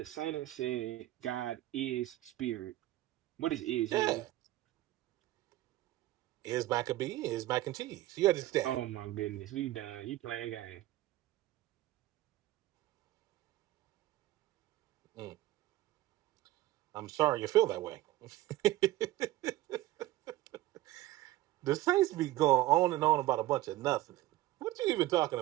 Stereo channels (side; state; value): left; quieter; 16.2 dB